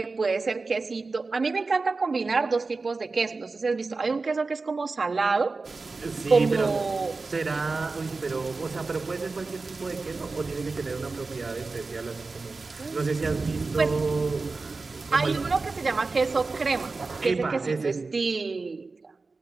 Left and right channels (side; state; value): left; quieter; 3.9 dB